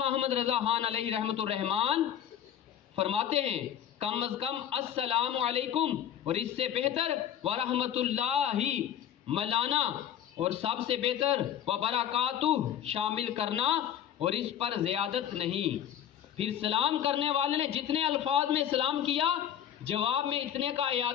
احمد رضا خان علیہ رحمت الرحمان فرماتے ہیں کم از کم السلام علیکم، اور اس سے بہتر ورحمت اللہ ملانا، اور سب سے بہتر وبرکاتہ شامل کرنا، اور اس پر زیادت نہیں۔ پھر سلام کرنے والے نے جتنے الفاظ میں سلام کیا، جواب میں اتنے کا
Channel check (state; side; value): quieter; right; 10.1 dB